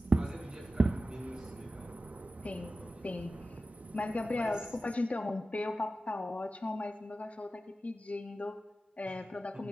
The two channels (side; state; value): both; normal; correlation 0.94